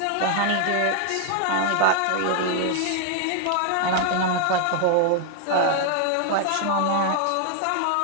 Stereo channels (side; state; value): both; different; correlation 0.00